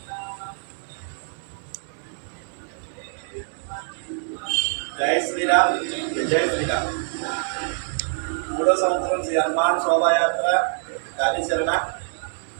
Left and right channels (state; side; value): silent; left; 60 dB below the other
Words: జై శ్రీరామ్ జై శ్రీరామ్. 3వ సంవత్సరం శ్రీ హనుమాన్ శోభాయాత్ర కార్యాచరణ